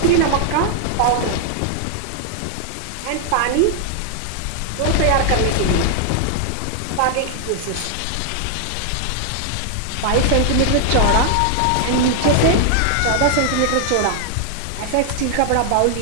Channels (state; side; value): different; both; correlation 0.00